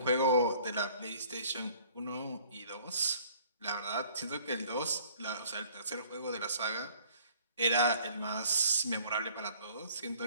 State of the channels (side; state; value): both; inverted; correlation -0.55